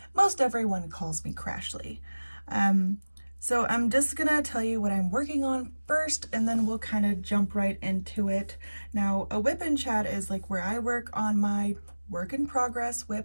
most everyone calls me Crashley. So I'm just gonna tell you what I'm working on first, and then we'll kind of jump right into it. Now, a WIP Chat is like where I work on my work in progress,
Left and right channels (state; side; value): inverted; both; correlation -1.00